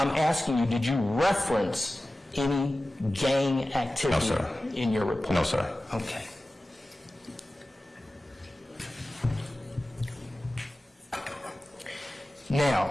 asking you, did you reference any gang activity No, sir. in your report? No, sir. Okay.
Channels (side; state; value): both; normal; correlation 0.96